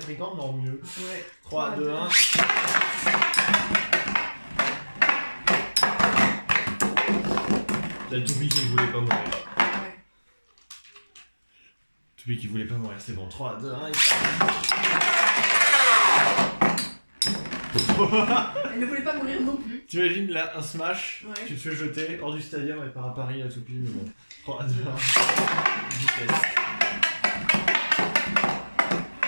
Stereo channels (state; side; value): inverted; both; correlation -1.00